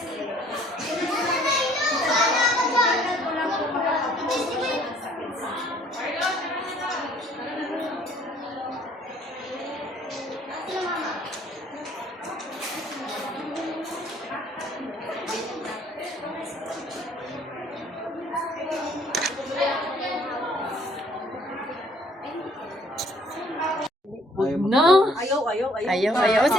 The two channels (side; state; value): both; normal; correlation 0.59